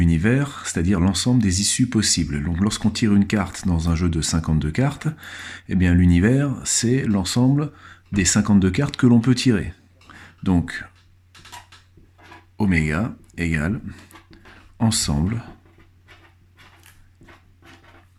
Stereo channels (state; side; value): identical; both; correlation 1.00